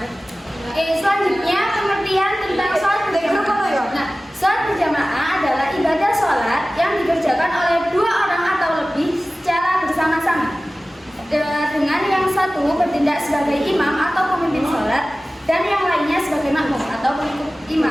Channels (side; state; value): both; normal; correlation 0.97